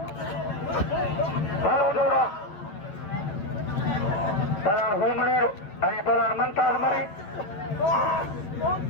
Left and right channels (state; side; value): late; right; 9.8 ms